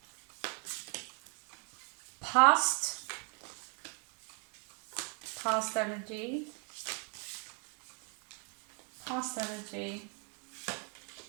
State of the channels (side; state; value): left; quieter; 38.3 dB